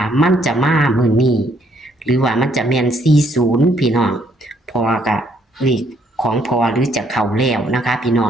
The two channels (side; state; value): both; normal; correlation 0.68